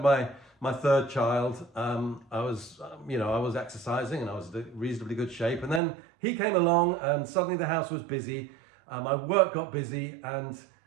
my third child, I was exercising and I was in reasonably good shape, and then he came along and suddenly the house was busy, my work got busy, and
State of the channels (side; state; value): left; drops out; at 5.8 s